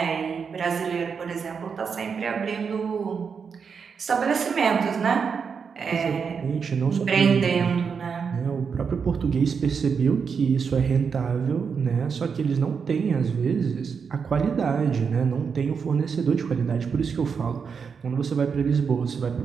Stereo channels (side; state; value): left; quieter; 6.1 dB